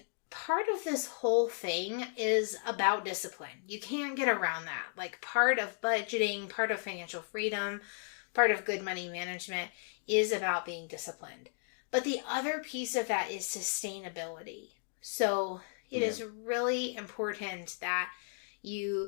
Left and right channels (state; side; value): silent; right; 55 dB below the other